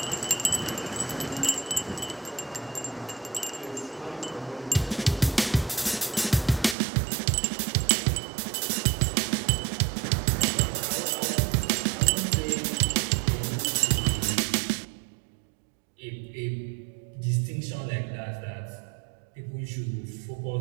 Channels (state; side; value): drops out; left; at 6.8 s